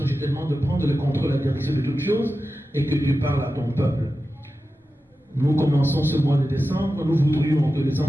je te demande de prendre le contrôle, la direction de toutes choses et que tu parles à ton peuple. Nous commençons ce mois de décembre. Nous voudrions que les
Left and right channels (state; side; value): normal; both; correlation 0.93